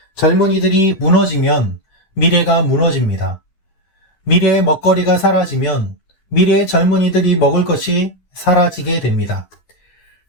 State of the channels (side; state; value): right; late; 11 ms